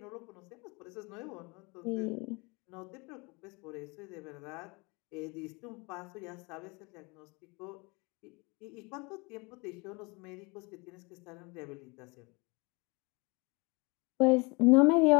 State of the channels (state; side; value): quieter; right; 28.0 dB